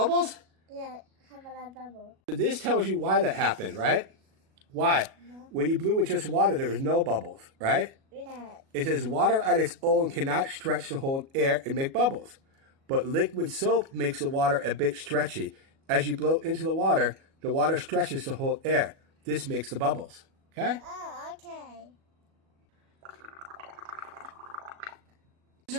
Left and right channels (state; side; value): late; left; 37 ms